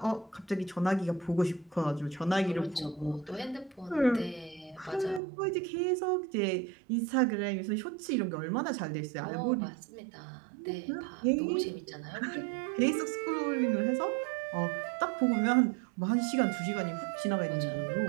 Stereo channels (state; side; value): drops out; left; at 5.2 s